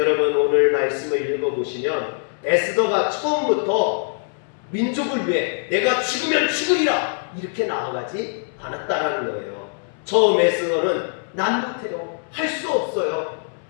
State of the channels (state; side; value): silent; right; 64 dB below the other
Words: 오늘 말씀을 읽어보시면 에스더가 처음부터 민족을 위해 내가 죽으면 죽으리라 이렇게 나아가지 않았다라는 거예요. 처음 에스더는 난 못해요, 할 수 없어요,